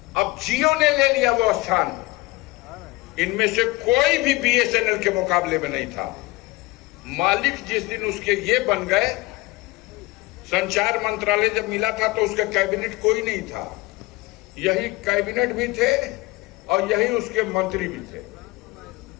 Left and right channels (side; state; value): right; quieter; 21.1 dB